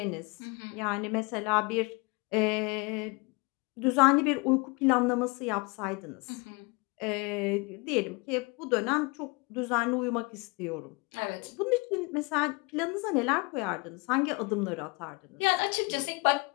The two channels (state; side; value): quieter; right; 28.5 dB